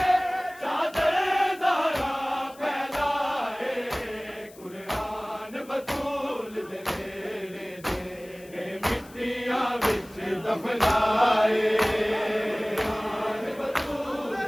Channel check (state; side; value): noise; left; hiss, 23 dB below the sound